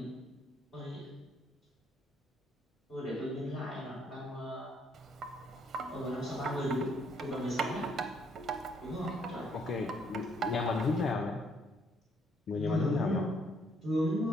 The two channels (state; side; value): normal; both; correlation 0.68